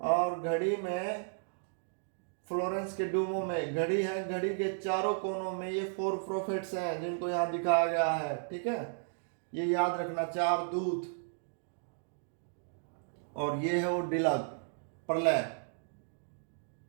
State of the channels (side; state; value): left; silent; digital silence